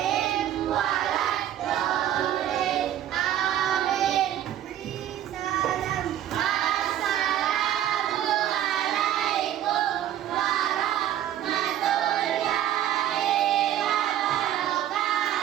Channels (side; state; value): left; quieter; 11.5 dB